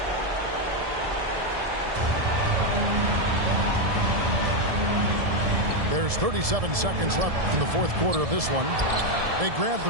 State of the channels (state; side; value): late; left; 1.7 ms